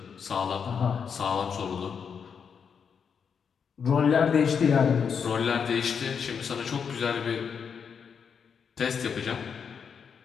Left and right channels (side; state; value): right; quieter; 6.7 dB